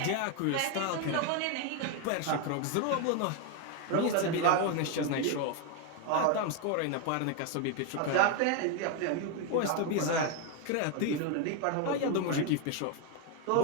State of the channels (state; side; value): different; both; correlation 0.01